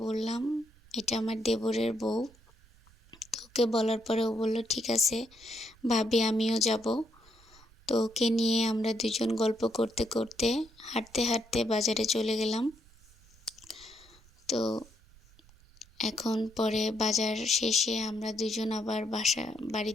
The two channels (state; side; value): noise; right; rumble, 27 dB below the sound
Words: বললাম, এটা আমার দেবরের বউ। তো ওকে বলার পরে ও বলল ঠিক আছে ভাবি, আমিও যাব। তো ওকে নিয়ে আমরা দুজন গল্প করতে করতে হাঁটতে হাঁটতে বাজারে চলে গেলাম। তো এখন পরে বাজার শেষে আমরা দুজন আবার